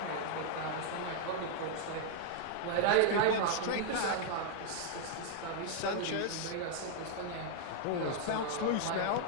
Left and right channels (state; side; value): different; both; correlation 0.00